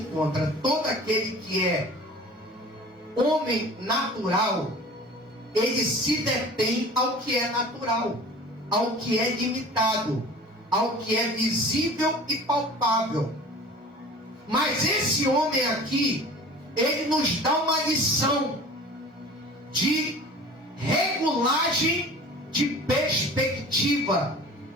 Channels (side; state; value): both; normal; correlation 0.42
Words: Todo aquele que é homem natural, ele se detém ao que é natural, ao que é limitado, ao que é visível e palpável. Mas esse homem aqui, ele nos dá uma lição de regulagem de perspectiva.